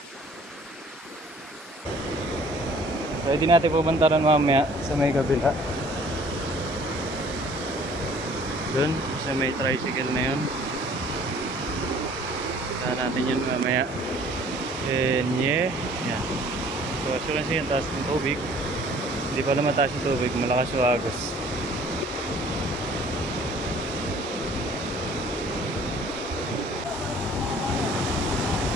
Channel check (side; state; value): both; normal; correlation 0.54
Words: Pwede natin pupuntaran mamaya sa may kabila. Doon, sa may tricycle na yun. Punta natin yun mamaya. And yeah, yan. So as you can see, yung taas ng tubig. Hindi pala mataas yung tubig, malakas yung agos.